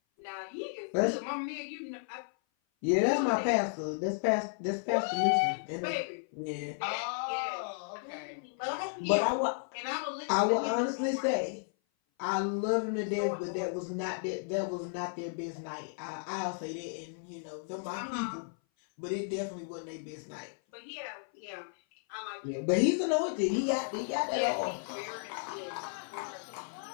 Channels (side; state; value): right; silent; 55 dB below the other